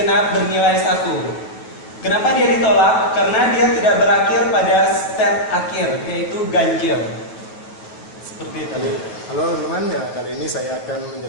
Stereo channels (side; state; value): right; late; 9.3 ms